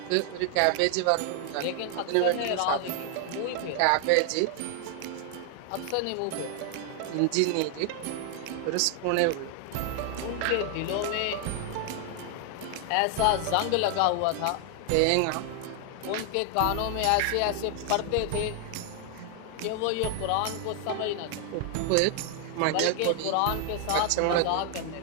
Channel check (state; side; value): different; both; correlation 0.00